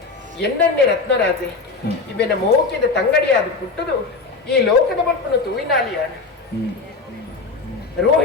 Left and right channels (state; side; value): quieter; right; 4.0 dB